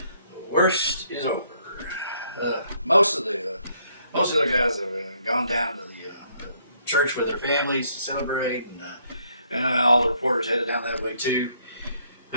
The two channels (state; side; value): inverted; both; correlation -0.69